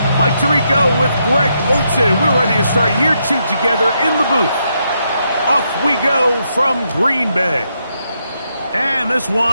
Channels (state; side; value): inverted; both; correlation -0.79